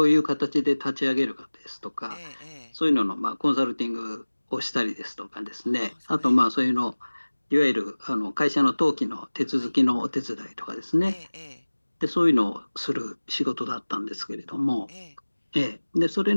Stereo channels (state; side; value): inverted; both; correlation -1.00